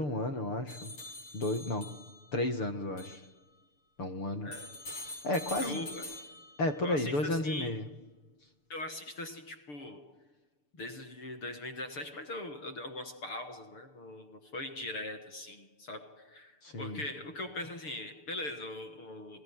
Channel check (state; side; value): late; right; 6.8 ms